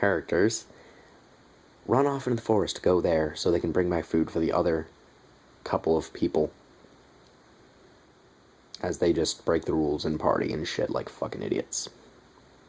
run off into the forest to go there so they can bring back food for the other couple of people. as they just break the rules and party and shit like fucking idiots.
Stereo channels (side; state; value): both; identical; correlation 1.00